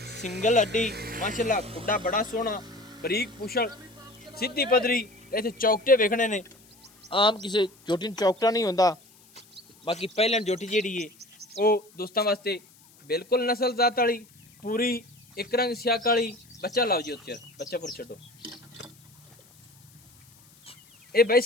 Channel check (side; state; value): left; noise; hiss, 28 dB below the sound